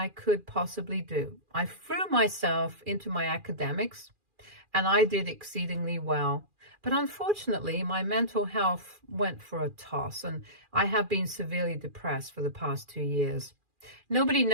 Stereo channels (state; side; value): late; left; 2.4 ms